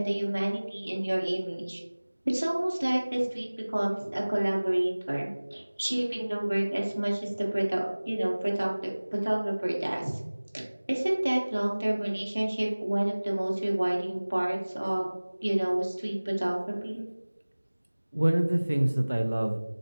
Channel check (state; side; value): inverted; both; correlation -1.00